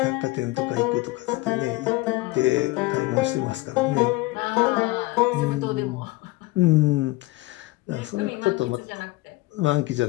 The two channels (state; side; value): quieter; right; 20.6 dB